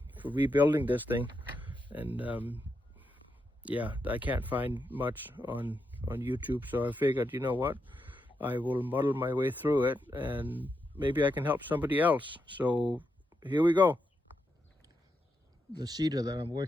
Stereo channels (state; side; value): normal; both; correlation 0.84